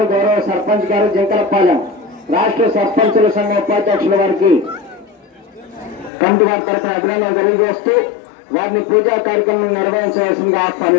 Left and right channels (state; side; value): drops out; right; at 6.1 s